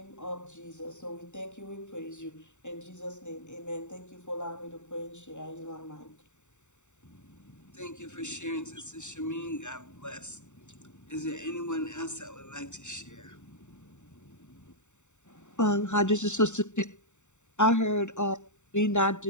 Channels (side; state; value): right; late; 0.84 ms